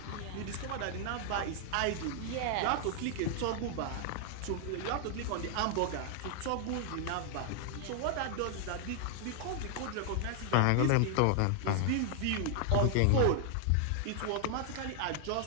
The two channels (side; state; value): both; different; correlation 0.00